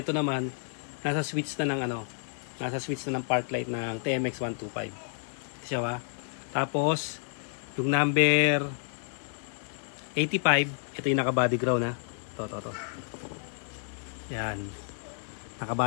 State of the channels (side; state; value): right; silent; 58 dB below the other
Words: naman, nasa switch na ng ano, nasa switch na ng park light ng TMX125. Ito siya ba? Tapos, yung number 85, ito yung naka-body ground ha. Ito. Yan.